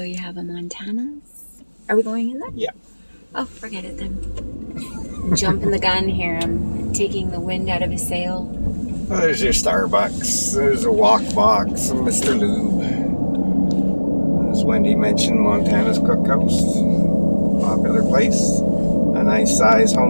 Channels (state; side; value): inverted; both; correlation -1.00